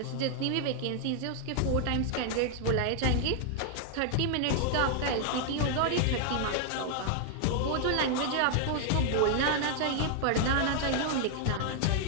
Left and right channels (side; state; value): both; different; correlation 0.00